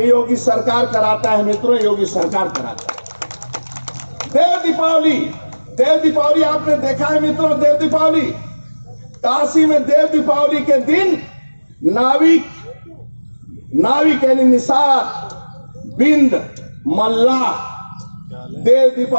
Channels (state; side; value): inverted; both; correlation -1.00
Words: योगी सरकार कराता है मित्रों, योगी सरकार कराता है। देव दीपावली आपने देखा है मित्रों, देव दीपावली काशी में देव दीपावली के दिन नाविक यानी निषाद, बिंद, मल्लाह, देव